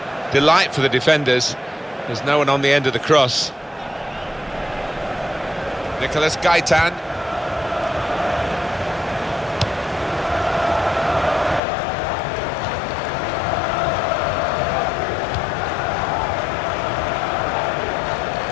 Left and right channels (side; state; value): right; drops out; at 11.6 s